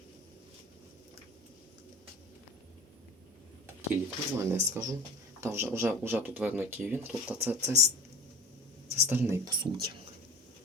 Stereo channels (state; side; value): normal; both; correlation 0.38